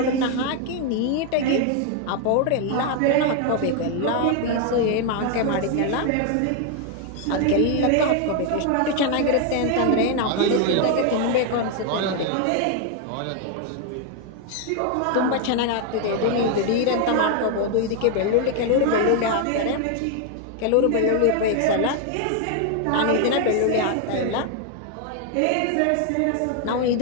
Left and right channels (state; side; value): different; both; correlation 0.01